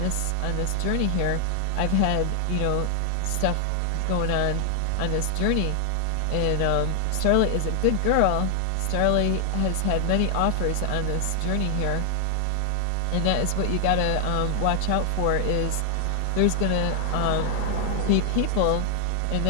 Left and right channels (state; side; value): different; both; correlation 0.00